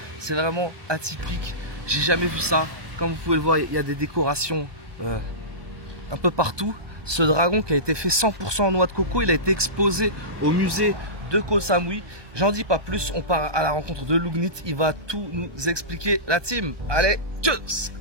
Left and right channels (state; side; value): late; left; 1.2 ms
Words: C'est vraiment atypique. J'ai jamais vu ça. Comme vous pouvez le voir, il y a des décorations un peu partout. Ce dragon qui a été fait 100% en noix de coco, il a été exposé au musée de Koh Samui. J'en dis pas plus, on part à la rencontre de Lugnit. Il va tout nous expliquer. La team, allez, tchuss!